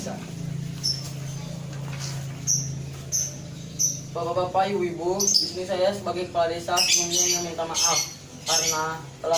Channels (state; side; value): identical; both; correlation 1.00